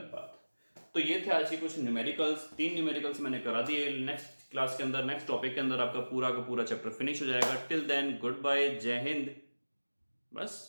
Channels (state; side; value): inverted; both; correlation -1.00